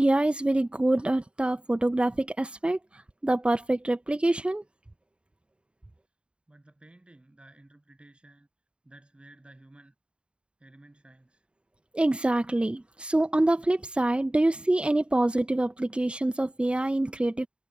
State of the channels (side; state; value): left; late; 0.053 ms